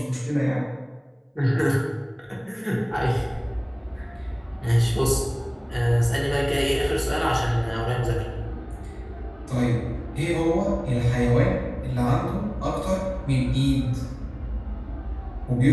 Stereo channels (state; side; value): identical; both; correlation 1.00